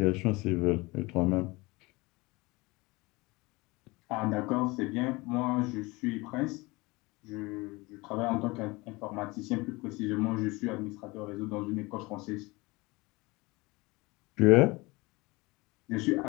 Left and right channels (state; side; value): quieter; right; 23.7 dB